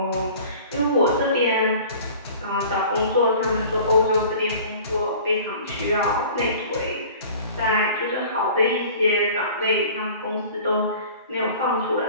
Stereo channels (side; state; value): both; inverted; correlation -0.44